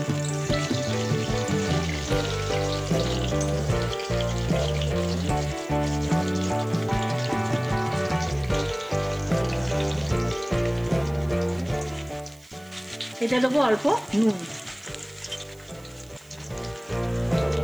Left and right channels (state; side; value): noise; right; hiss, 27 dB below the sound